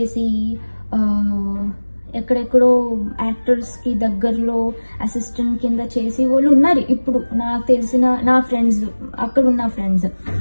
ఎక్కడెక్కడో యాక్టర్స్కి దగ్గరలో అసిస్టెంట్ కింద చేసి వాళ్ళు ఉన్నారు. ఇప్పుడు నాకు తెలిసిన నా ఫ్రెండ్స్, అక్కడున్న ఫ్రెండ్స్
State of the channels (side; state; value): both; inverted; correlation -1.00